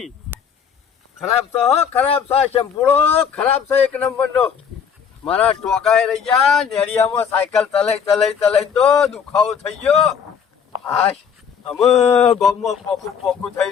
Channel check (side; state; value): right; quieter; 7.2 dB